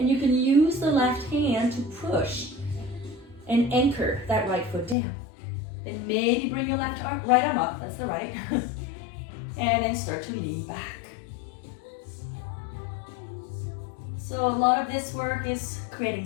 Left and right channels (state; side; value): drops out; right; at 5.0 s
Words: you can use the left hand to push and anchor that right foot down. Then maybe bring your right arm up, that's the right. And then start to lean back. So a lot of this work is creating